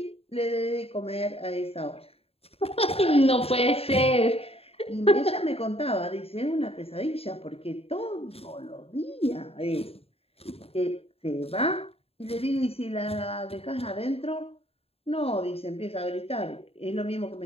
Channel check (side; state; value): right; late; 0.29 ms